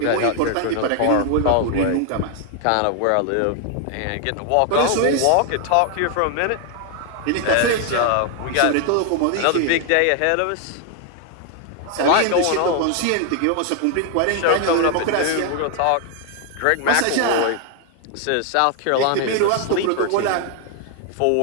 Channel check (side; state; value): both; different; correlation 0.00